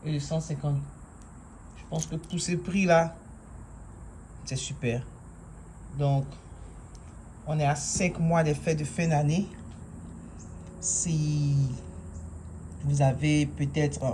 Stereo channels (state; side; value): identical; both; correlation 1.00